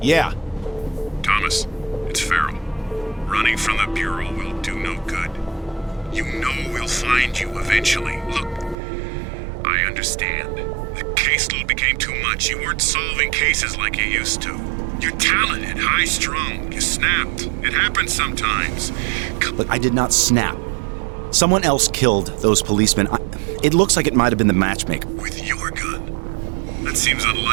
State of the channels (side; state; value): left; drops out; at 8.8 s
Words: Yeah. Thomas, it's Farrell. Running from the Bureau will do no good. You know we'll find you eventually. Look, I understand. The caseload became too much. You weren't solving cases like you used to. You're talented, high-strung. You snapped. It happens sometimes. Look, I did not snap. Someone else killed those policemen. It looks like it might have been the matchmaker. With your gun? That seems